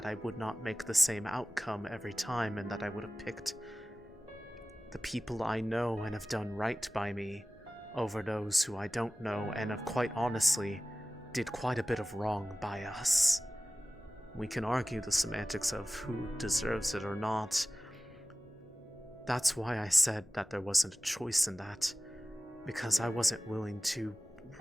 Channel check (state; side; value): normal; both; correlation 0.96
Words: I would not make the same outcome every time, and that I would have picked the people I know and have done right by me over those who I don't know and have quite honestly did quite a bit of wrong by us. We can argue the semantics of who deserves it or not. That's why I said that there wasn't a choice in that, because I wasn't willing to